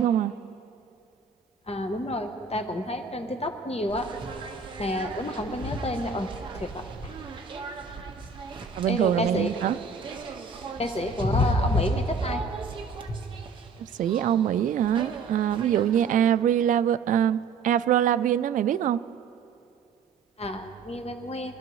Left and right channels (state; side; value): quieter; left; 5.2 dB